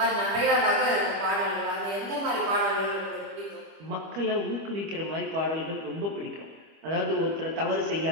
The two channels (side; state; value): left; late; 25 ms